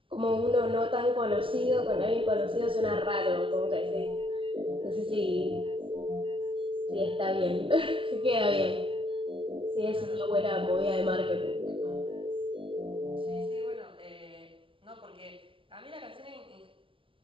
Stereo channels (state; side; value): late; left; 0.25 ms